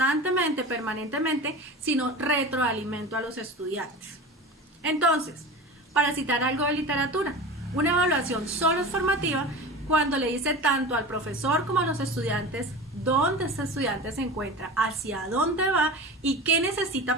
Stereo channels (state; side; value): normal; both; correlation 0.32